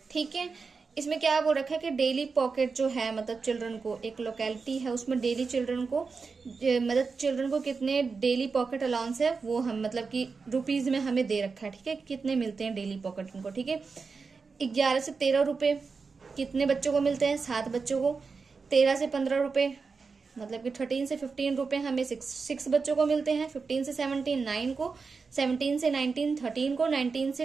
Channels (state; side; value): quieter; left; 4.8 dB